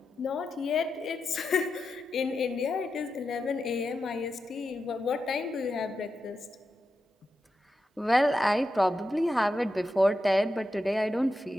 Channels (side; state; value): both; normal; correlation 0.88